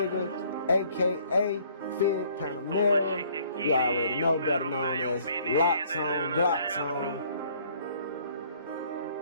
aka Figg Panamera. You already know, better known as Locks On, Glocks On.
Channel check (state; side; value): inverted; both; correlation -0.60